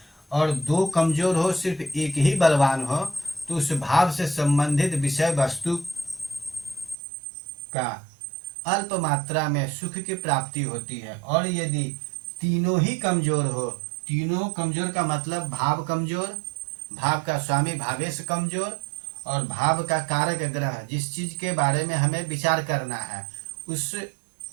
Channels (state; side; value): drops out; left; at 7.0 s